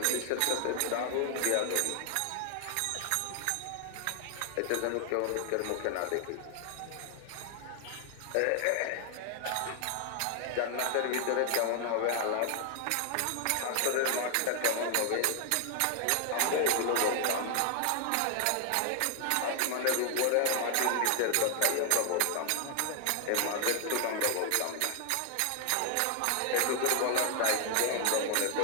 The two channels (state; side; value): different; both; correlation 0.00